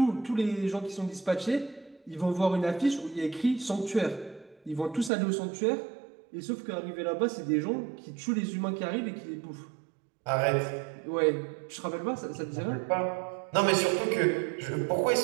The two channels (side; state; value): left; drops out; at 5.1 s